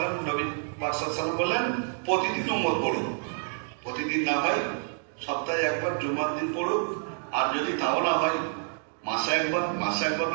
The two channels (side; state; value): left; silent; 59 dB below the other